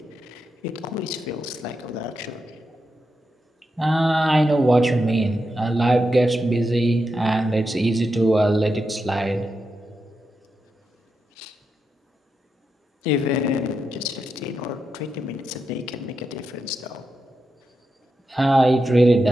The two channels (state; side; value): normal; both; correlation 0.87